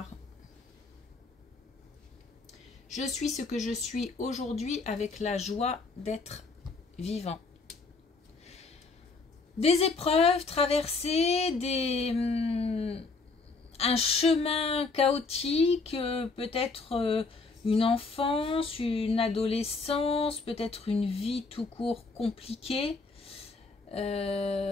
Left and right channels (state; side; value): quieter; right; 4.0 dB